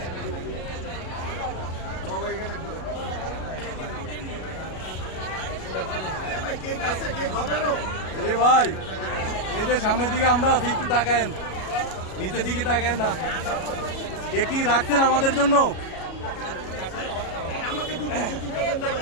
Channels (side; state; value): right; late; 37 ms